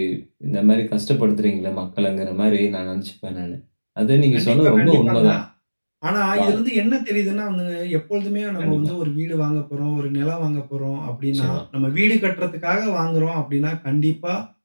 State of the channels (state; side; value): inverted; both; correlation -1.00